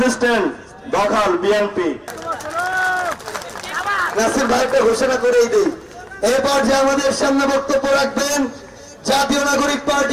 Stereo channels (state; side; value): identical; both; correlation 1.00